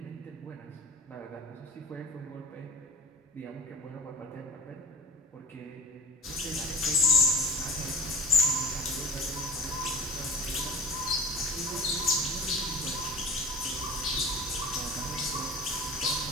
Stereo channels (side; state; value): both; normal; correlation 0.38